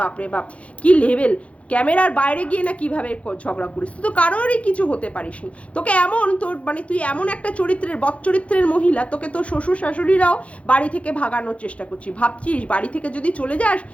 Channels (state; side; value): late; right; 0.063 ms